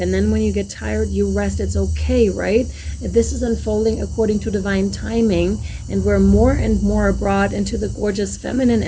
then when you get tired, you rest. It's okay, right? This is unfolding according to divine timing, and we're more and more brought into the gorgeous feminine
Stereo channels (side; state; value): both; identical; correlation 1.00